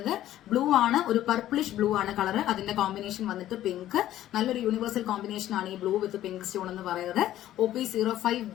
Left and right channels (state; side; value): quieter; right; 13.1 dB